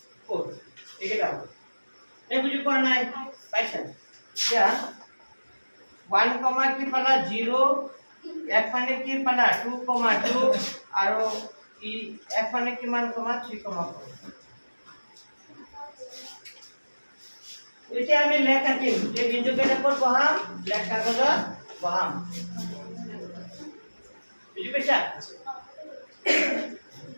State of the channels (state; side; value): inverted; both; correlation -1.00